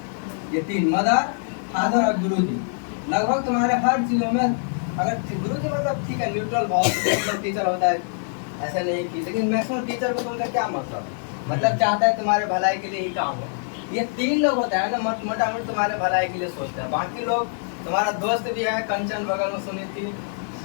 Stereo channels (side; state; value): right; silent; 59 dB below the other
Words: ये 3, मदर, फादर और गुरुजी, लगभग तुम्हारे हर चीजों में, अगर गुरुजी मतलब ठीक है न्यूट्रल बहुत टीचर होता है, ऐसा नहीं की, लेकिन मैक्सिमम टीचर को तुमका क्या मतलब चाहता है तुम्हारे भलाई के लिए ही काम हो। ये 3 लोग होता है ना, मोटा मोटी तुम्हारे भलाई के लिए सोचते हैं। बाकी लोग, तुम्हारा दोस्त भी है कंचन बगल में सुनी थी,